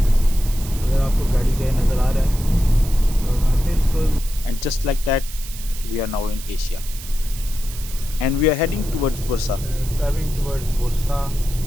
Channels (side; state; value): right; noise; hiss, 13 dB below the sound